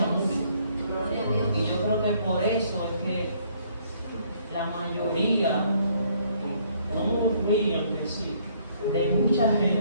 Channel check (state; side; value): inverted; both; correlation -0.65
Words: mucho. Y yo creo que por eso es que la mayoría, no murmuran que sí, de mucha